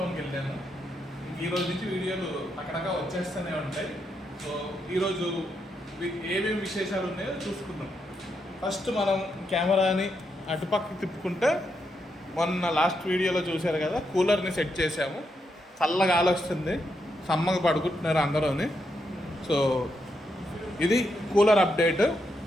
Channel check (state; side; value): normal; both; correlation 0.82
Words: వెళ్ళాను. ఈరోజు నుంచి వీడియోలు అక్కడగా వచ్చేస్తూనే ఉంటాయి. సో ఈరోజు ఏమేమి విశేషాలు ఉన్నాయో చూసుకుందాం. ఫస్ట్ మనం కెమెరాని అటుపక్కకి తిప్పుకుంటే మొన్న లాస్ట్ వీడియోలో చూశారు కదా, కూలర్ని సెట్ చేసాము. చల్లగా గాలి వస్తుంది, సమ్మగా పడుకుంటున్నారు అందరూని. సో ఇది కూలర్ అప్డేట్.